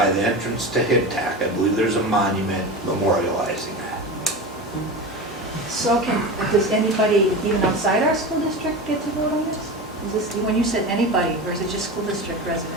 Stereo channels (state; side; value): normal; both; correlation 0.27